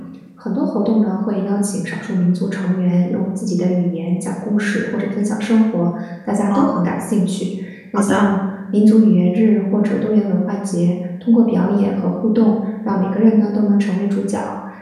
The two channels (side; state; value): both; identical; correlation 1.00